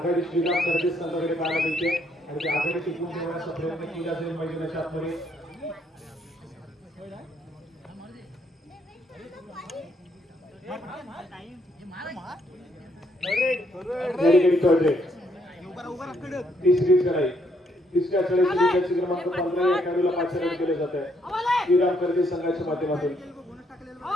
श्रीराम कर्दे संघाकडे पाहायला मिळते आणि ती आघाडी टिकवून ठेवण्याचा प्रयत्न केला जाईल मैदानाच्या आतमध्ये तिसरी चढाई तिसऱ्या चढाईसाठी क्रमांक 15 या खेळाडूला पाचारण केले जात आहे श्रीराम कर्दे संघाच्या माध्यमातून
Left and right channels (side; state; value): both; normal; correlation 0.71